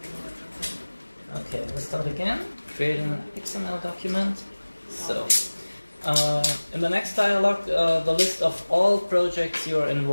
okay, let's start again. Creating an XML document. So, in the next dialog, the list of all projects you are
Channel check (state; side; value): inverted; both; correlation -1.00